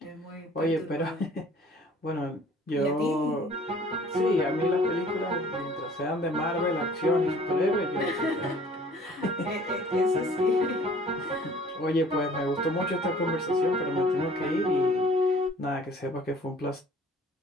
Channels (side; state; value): both; normal; correlation 0.52